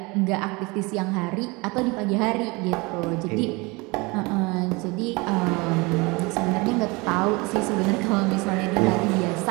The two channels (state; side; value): quieter; left; 25.9 dB